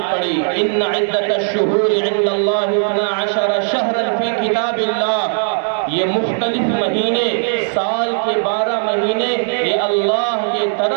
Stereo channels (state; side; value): silent; left; 62 dB below the other